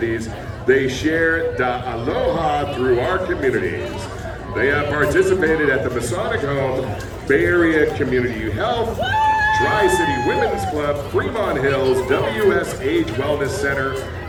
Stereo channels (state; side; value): identical; both; correlation 1.00